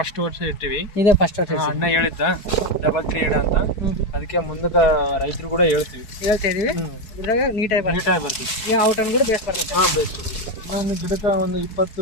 ವರ್ಷ ಇಟ್ಟಿವಿ. ಇದೇ ಫಸ್ಟ್ ವರ್ಷ ಅಣ್ಣ ಹೇಳಿದ್ದ 3 ಇಡ ಅಂತ. ಅದಕ್ಕೆ ಮುಂದಕ್ಕೆ ರೈತರು ಕೂಡ ಹೇಳ್ತಾ ಇದೀವಿ. ಇದ್ರಾಗ ನೀಟಾಗಿ ಬರ್ತೀವಿ. ಈಗ ಔಟನ್ ಕೂಡ ಬೇಸ್ ಬರ್ತೈತೆ. ಬೇಸ್ ಒಂದು ಗಿಡಕ್ಕೆ ಒಂದು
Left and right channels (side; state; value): right; late; 4.7 ms